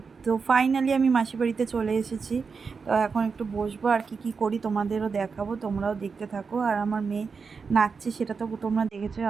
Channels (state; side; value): quieter; left; 5.2 dB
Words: তো ফাইনালি আমি মাসি বাড়িতে চলে এসেছি। তো এখন একটু বসবো, আর কি করি তোমাদেরও দেখাবো, তোমরাও দেখতে থাকো। আর আমার মেয়ে নাচছে, সেটা তো তোমরা দেখেছো,